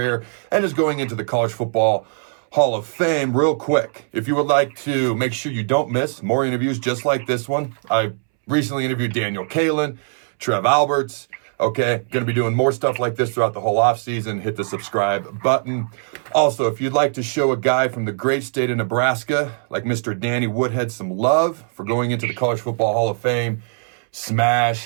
and is going into the College Football Hall of Fame, real quick, if you would like to make sure you don't miss more interviews just like this one, I recently interviewed Daniel Kalin, Trev Alberts. Okay, going to be doing more stuff like this throughout the whole offseason. Hit the subscribe button. Also, if you'd like to show a guy from the great state of Nebraska, like Mr. Danny Woodhead, some love for going into the College Football Hall of Fame,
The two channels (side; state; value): left; silent; 65 dB below the other